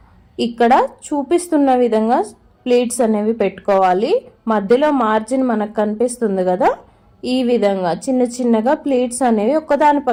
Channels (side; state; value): both; identical; correlation 1.00